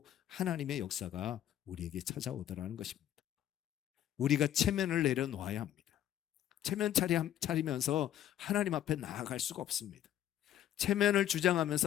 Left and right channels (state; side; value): quieter; right; 11.6 dB